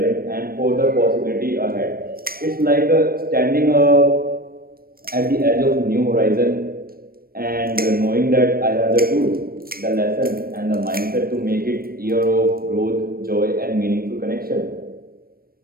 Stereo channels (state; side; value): late; left; 0.44 ms